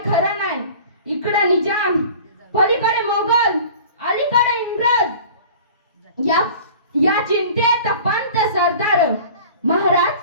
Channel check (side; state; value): both; inverted; correlation -0.43